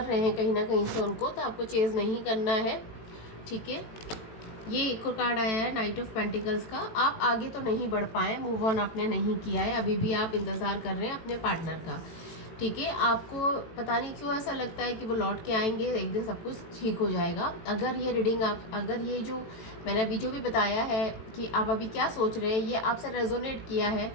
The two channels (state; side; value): late; right; 18 ms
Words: रहे हैं कहीं ना कहीं से उनको, तो आपको चेस नहीं करना है। ठीक है, ये एक और कार्ड आया है, नाइट ऑफ पेंटिकल्स का। आप आगे तो नहीं बढ़ पाए, मूव ऑन आपने नहीं किया है, अभी भी आप इंतज़ार कर रहे हैं अपने पार्टनर का। ठीक है, आपको पता नहीं क्यों ऐसा लगता है कि वो लौट के आएंगे, एक दिन सब कुछ ठीक हो जाएगा। अगर ये रीडिंग अगर ये जो मैंने अभी जो भी बताया है कि आप अभी क्या सोच रहे हैं, ये आपसे रेजोनेट किया है,